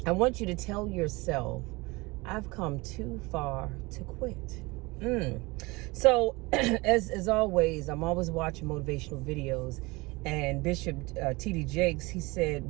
I want you to tell yourself, I've come too far to quit. So, as always, I'm always watching motivational videos, and Bishop T.D. Jakes, he said,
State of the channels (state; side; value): quieter; left; 23.9 dB